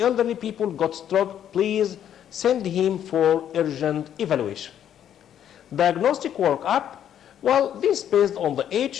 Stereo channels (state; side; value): quieter; right; 10.0 dB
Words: people got stroke, please send him for urgent evaluation. Diagnostic workup, well, this is based on the